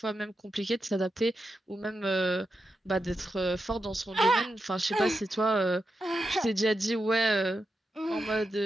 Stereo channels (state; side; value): normal; both; correlation 0.87